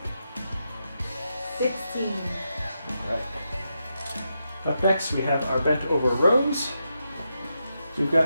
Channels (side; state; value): both; inverted; correlation -0.85